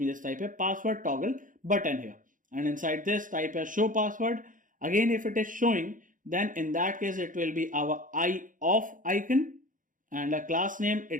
just type a password toggle button here, and inside this type a show password. Again, if it is showing, then in that case it will be our eye off icon, and a class name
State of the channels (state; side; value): late; left; 0.38 ms